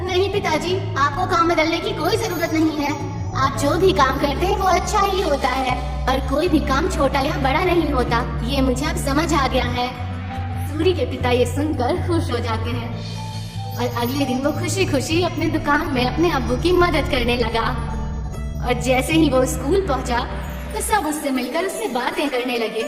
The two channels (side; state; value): both; identical; correlation 1.00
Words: नहीं पिताजी, आपको काम बदलने की कोई जरूरत नहीं है। आप जो भी काम करते हैं वो अच्छा ही होता है और कोई भी काम छोटा या बड़ा नहीं होता। ये मुझे अब समझ आ गया है। सूरी के पिता ये सुनकर खुश हो जाते हैं और अगले दिन वो खुशी खुशी अपने दुकान में अपने अब्बू की मदद करने लगा। और जैसे ही वो स्कूल पहुंचा तो सब उससे मिलकर उससे बातें करने लगे